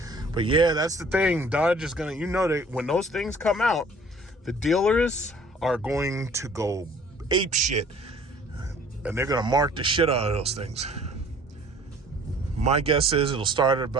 But yeah, that's the thing. Dodge is gonna, that when those things come out, the dealers are going to go ape shit, and they're gonna mark the shit out of those things. My guess is it'll start at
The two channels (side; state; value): both; normal; correlation 0.52